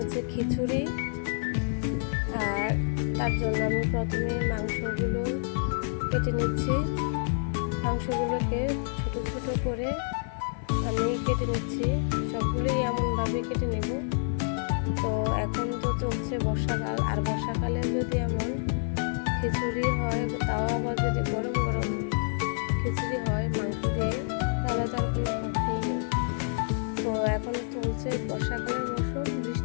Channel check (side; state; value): right; silent; 55 dB below the other